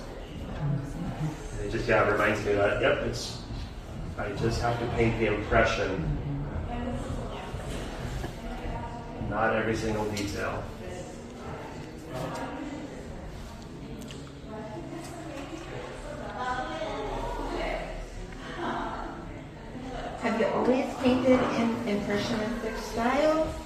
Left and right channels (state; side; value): identical; both; correlation 1.00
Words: It just reminds me that I just have to paint the impression, not every single detail. Have you always painted in impressionistic style?